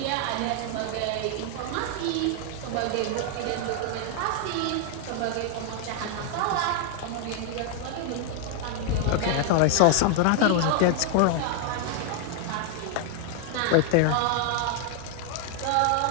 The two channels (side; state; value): both; different; correlation 0.00